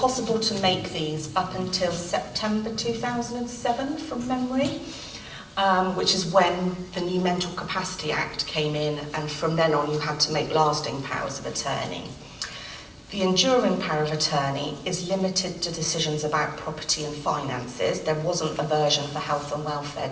to make these up until September 2007 from memory, which is when the new Mental Capacity Act came in, and from then on you had to make lasting powers of attorney. The enduring power of attorney is limited to decisions about property and finances. There wasn't a version for health and welfare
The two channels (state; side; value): identical; both; correlation 1.00